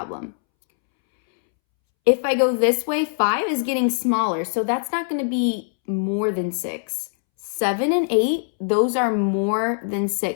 If I go this way, 5 is getting smaller, so that's not going to be more than 6. 7 and 8, those are more than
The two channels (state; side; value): silent; right; 64 dB below the other